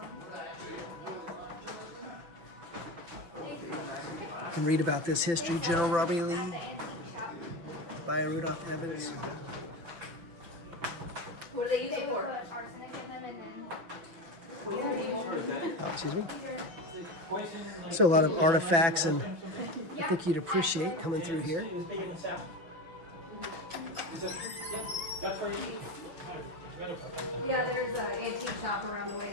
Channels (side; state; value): left; late; 6.0 ms